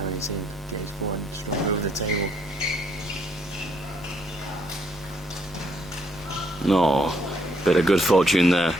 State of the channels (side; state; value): left; noise; rumble, 22 dB below the sound